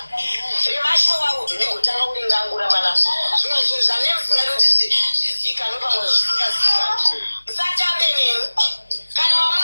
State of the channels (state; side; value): inverted; both; correlation -1.00